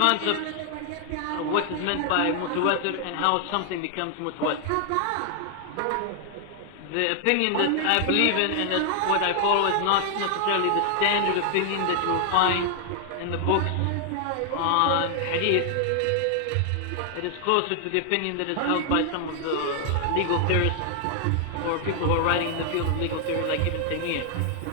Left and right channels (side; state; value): both; different; correlation 0.00